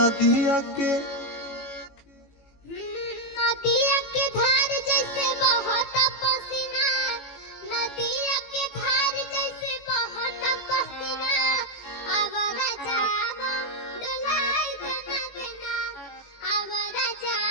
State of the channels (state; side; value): late; right; 18 ms